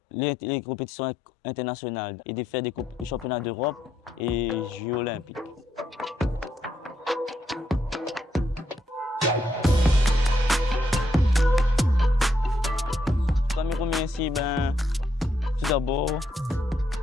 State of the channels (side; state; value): both; normal; correlation 0.77